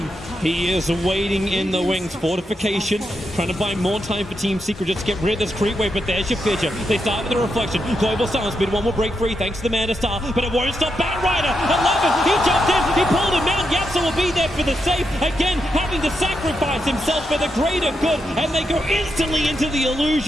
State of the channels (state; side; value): normal; both; correlation 0.84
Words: he is waiting in the wings. Fortification, trying to buy more time for Team Secret just to get rid of this creep wave, but there's your Fidget. They start with the reflection. Global Silence, mid one will break free thanks to the Mana Star, but it won't stop Batrider. 11, he jumped in, he pulled him out. Yapzor will be there for the save. Again, having to sacrifice himself for the greater good, and they go instantly into the